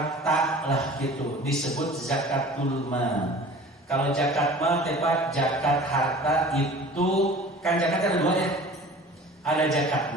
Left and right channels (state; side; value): normal; both; correlation 0.43